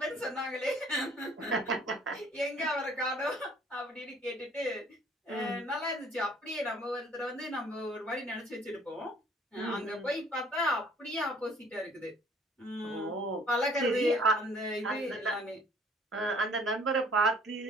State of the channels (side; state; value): both; normal; correlation 0.57